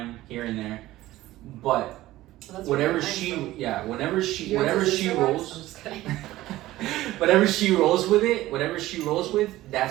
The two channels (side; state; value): left; quieter; 16.2 dB